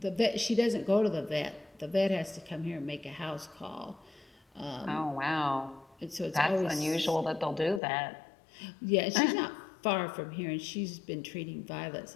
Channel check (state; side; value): drops out; right; at 7.8 s